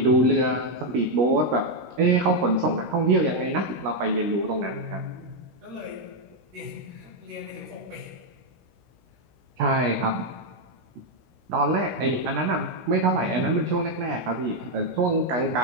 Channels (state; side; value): late; left; 16 ms